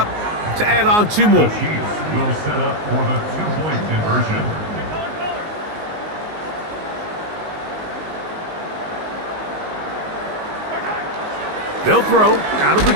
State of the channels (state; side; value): late; left; 19 ms